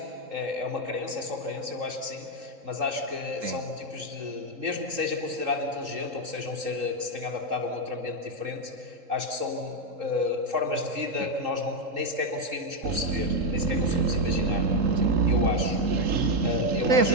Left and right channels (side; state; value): left; late; 3.7 ms